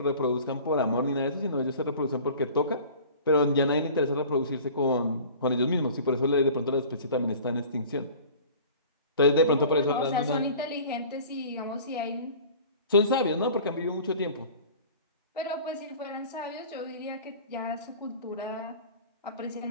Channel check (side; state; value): both; inverted; correlation -0.43